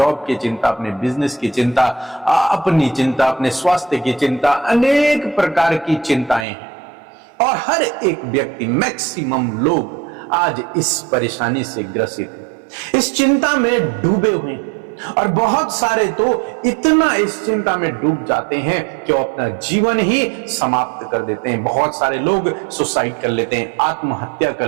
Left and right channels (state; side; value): drops out; left; at 6.5 s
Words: की चिंता, अपने बिजनेस की चिंता, अपनी चिंता, अपने स्वास्थ्य की चिंता, अनेक प्रकार की चिंताएं हैं। और हर एक व्यक्ति, मैक्सिमम लोग आज इस परेशानी से ग्रसित हैं, इस चिंता में डूबे हुए हैं। और बहुत सारे तो इतना इस चिंता में डूब जाते हैं कि वो अपना जीवन ही समाप्त कर देते हैं। बहुत सारे लोग सुसाइड कर लेते हैं, आत्महत्या कर